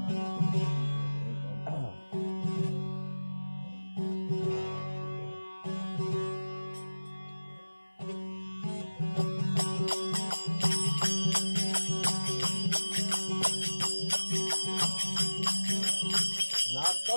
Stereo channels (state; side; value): inverted; both; correlation -1.00